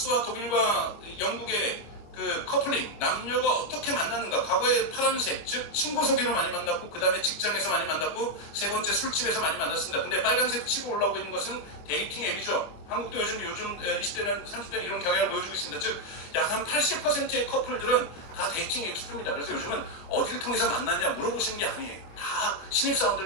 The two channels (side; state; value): right; late; 25 ms